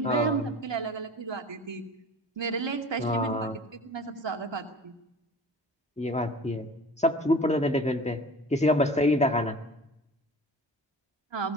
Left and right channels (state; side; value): normal; both; correlation 0.41